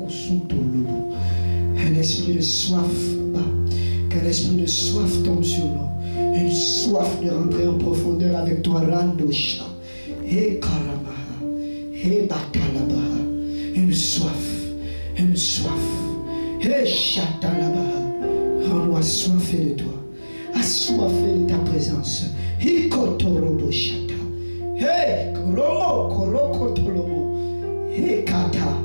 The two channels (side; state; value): both; inverted; correlation -1.00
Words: esprit de soif, qu'un esprit de soif tombe sur nous. Une soif de rentrer en profondeur avec toi, Randosha. Et Karamaha. Et Batalabaha. Une soif. Une soif. Et Chatalabaha. Rends-nous assoiffés de toi. Assoiffés de ta présence. Hikotorobo Shata. Hey, Koromo, Koroko Tolomo. Hey, Kata.